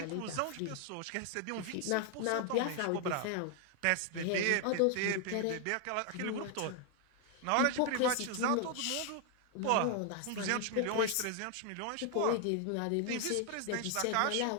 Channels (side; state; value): both; different; correlation 0.00